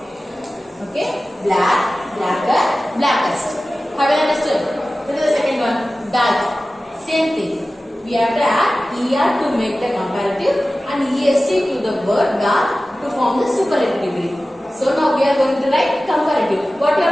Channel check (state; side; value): normal; both; correlation 0.96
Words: Okay, black, blacker, blackest. Have you understood? This is the second one. Dark. Same thing. We have to add er to make the comparative and est to the word dark to form the superlative degree. So now we are going to write comparative. What you